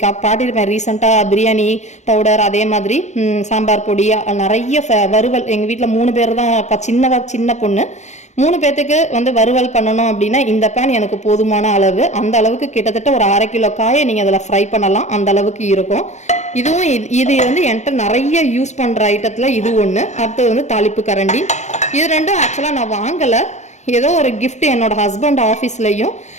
பாட்டிருப்பேன் ரீசெண்டாக பிரியாணி பவுடர், அதே மாதிரி சாம்பார் பொடி, நிறைய வறுவல். எங்கள் வீட்டில் 3 பேர் தான், சின்ன பொண்ணு. 3 பேத்துக்கு வந்து வறுவல் பண்ணணும் அப்படின்னா இந்த பேன் எனக்கு போதுமான அளவு. அந்த அளவுக்கு கிட்டத்தட்ட ஒரு 1/2 கிலோ காயை நீங்கள் அதில் ஃப்ரை பண்ணலாம், அந்த அளவுக்கு இருக்கும். இது வந்து என்கிட்ட நிறைய யூஸ் பண்ணுற ஐட்டத்தில் இது ஒன்று. அடுத்தது வந்து தாளிப்பு கரண்டி. இது ரெண்டும் ஆக்சுவலாக நான் வாங்கலை, ஏதோ ஒரு கிஃப்ட் என்னோட ஹஸ்பண்ட் ஆஃபீஸ்லையும்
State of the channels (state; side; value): late; right; 0.33 ms